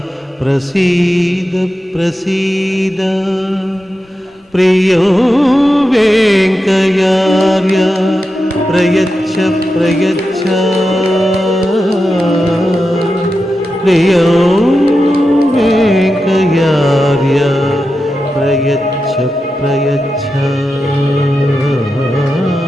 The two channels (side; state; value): both; normal; correlation 0.90